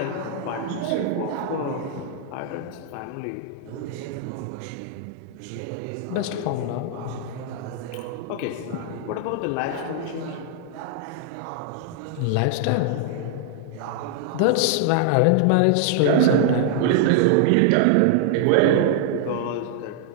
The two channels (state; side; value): different; both; correlation -0.01